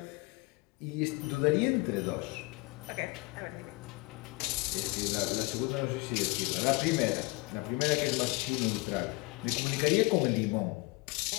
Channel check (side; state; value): right; quieter; 25.0 dB